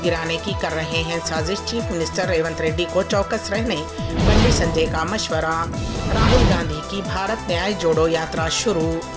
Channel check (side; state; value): both; identical; correlation 1.00